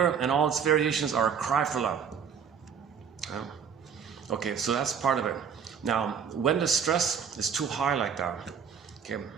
and all its variations are a cry for love. Okay, so that's part of it. Now, when the stress is too high like that, okay,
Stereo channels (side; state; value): left; quieter; 7.2 dB